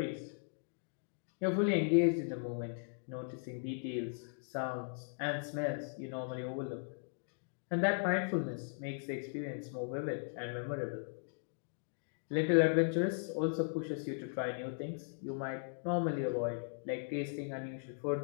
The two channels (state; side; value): silent; right; digital silence